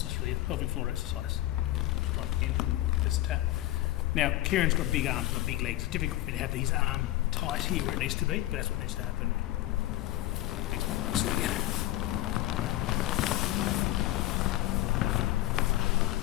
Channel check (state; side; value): quieter; right; 15.7 dB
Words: just really a pelvic floor exercise. Just right again, just a tap. Now, Kieran's got big arms, got big legs. It's difficult for me to have his arm tight here where it needs to be, but that's what needs to happen.